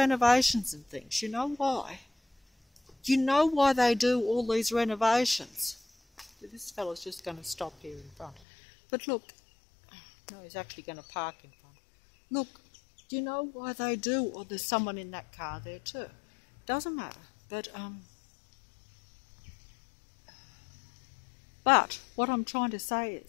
and things. You know why? You know why they do all these renovations? This fellow's just going to stop here in front. But look, no, he's actually going to park in front. Look, do you know why they do? Or there's someone in that car there too. Doesn't matter. But what I'm trying to say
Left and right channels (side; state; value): right; drops out; at 8.4 s